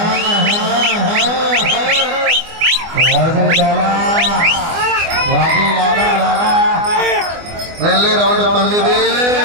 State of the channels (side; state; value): left; late; 24 ms